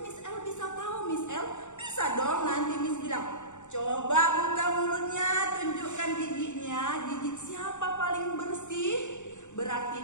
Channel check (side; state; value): right; late; 0.85 ms